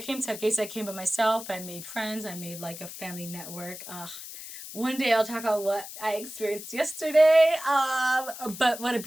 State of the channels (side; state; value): left; noise; hiss, 12 dB below the sound